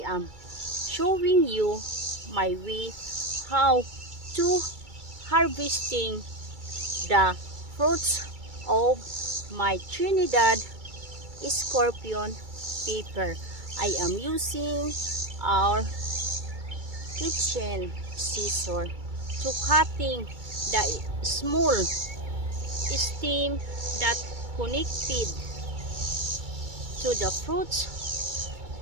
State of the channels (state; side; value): late; left; 2.3 ms